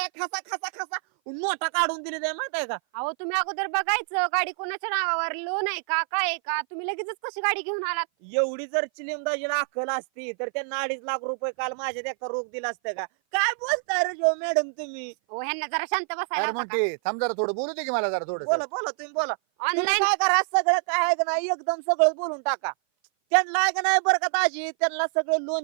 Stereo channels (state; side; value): silent; left; 56 dB below the other